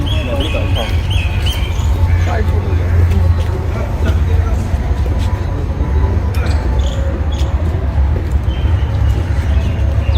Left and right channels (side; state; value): both; identical; correlation 1.00